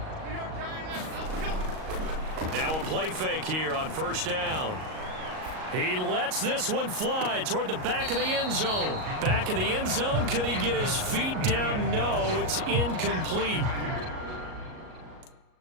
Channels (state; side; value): late; left; 38 ms